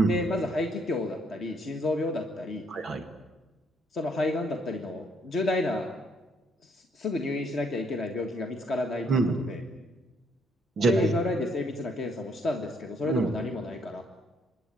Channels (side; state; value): both; normal; correlation 0.69